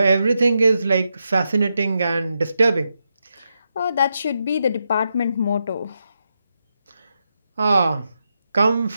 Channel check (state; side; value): inverted; both; correlation -0.85